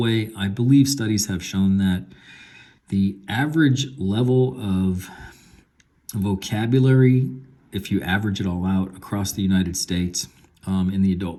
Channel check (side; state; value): both; identical; correlation 1.00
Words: I believe studies have shown that the average level of vocabulary, if you average it all out across the United States in the